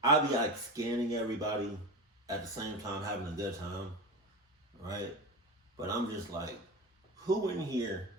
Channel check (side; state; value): both; normal; correlation 0.24